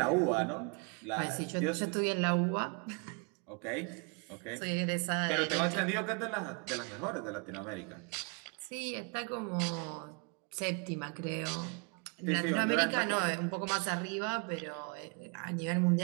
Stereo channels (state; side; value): quieter; left; 34.6 dB